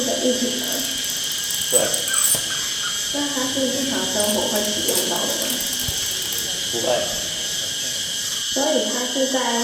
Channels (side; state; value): both; identical; correlation 1.00